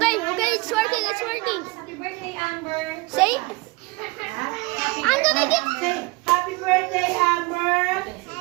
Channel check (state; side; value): quieter; left; 24.5 dB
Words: it's working, Happy birthday, Amber. Say, I'm gonna get... Say, happy birthday, Amber.